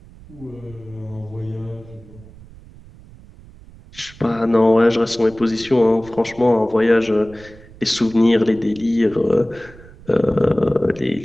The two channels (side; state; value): right; noise; rumble, 21 dB below the sound